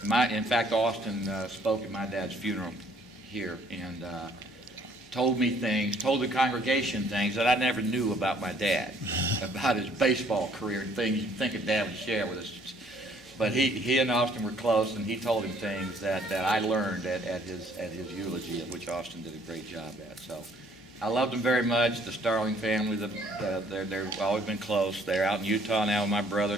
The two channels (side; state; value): both; normal; correlation 0.62